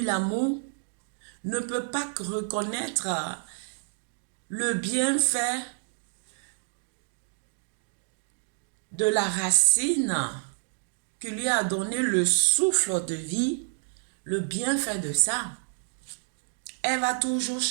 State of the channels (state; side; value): silent; left; digital silence